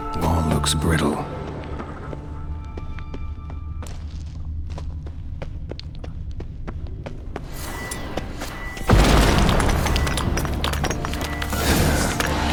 Wall looks brittle.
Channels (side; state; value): both; identical; correlation 1.00